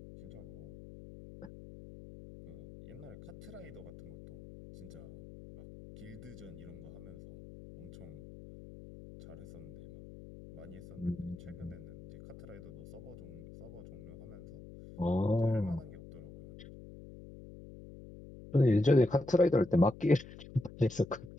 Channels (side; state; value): left; noise; hum, 16 dB below the sound